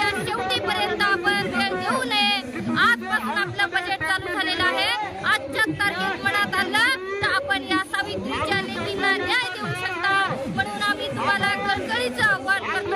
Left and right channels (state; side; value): identical; both; correlation 1.00